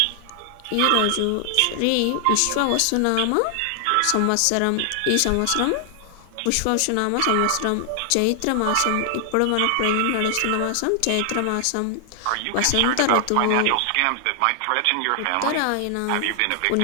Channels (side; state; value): both; different; correlation 0.00